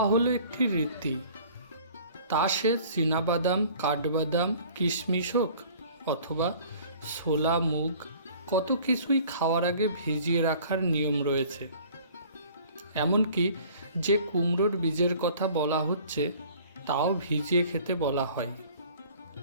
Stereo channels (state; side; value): inverted; both; correlation -0.50